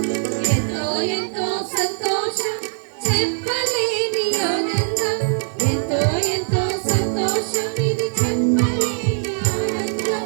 ఎంతో ఎంతో సంతోషం, చెప్పలేని ఆనందం. ఎంతో ఎంతో సంతోషం, ఇది చెప్పలేని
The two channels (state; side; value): silent; left; digital silence